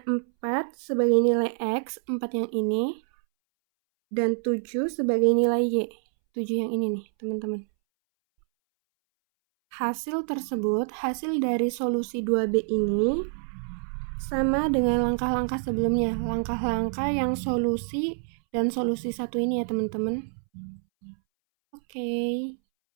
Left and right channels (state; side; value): silent; left; 60 dB below the other